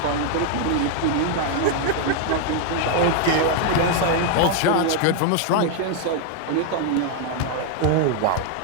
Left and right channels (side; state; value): both; different; correlation 0.00